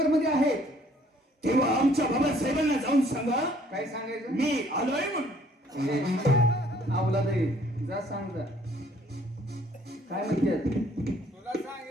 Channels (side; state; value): both; normal; correlation 0.61